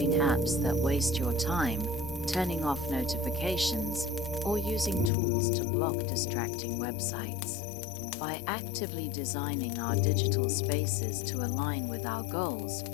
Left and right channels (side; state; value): right; drops out; at 5.1 s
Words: apps that waste your time, turning off notifications, or using tools to block distracting websites. By actively designing our digital spaces to align with our goals,